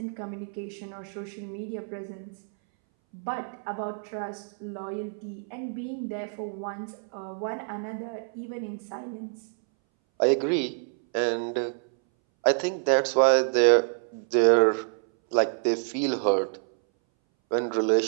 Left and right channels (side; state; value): left; silent; 60 dB below the other